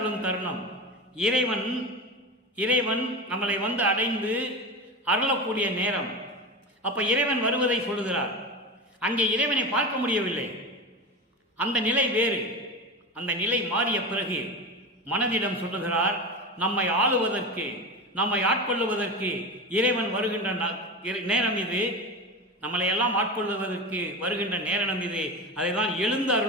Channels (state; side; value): normal; both; correlation 0.24